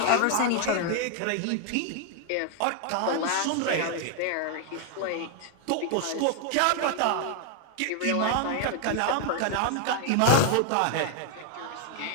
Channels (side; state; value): both; different; correlation 0.00